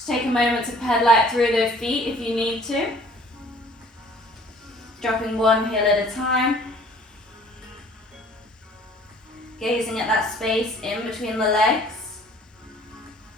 take a moment to pedal out through those feet if you need to. Dropping one heel at a time. Gazing at that space in between the legs.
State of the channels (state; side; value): normal; both; correlation 0.54